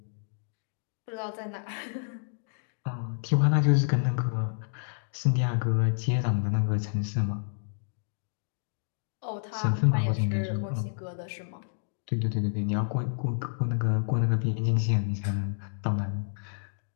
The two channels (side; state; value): right; silent; digital silence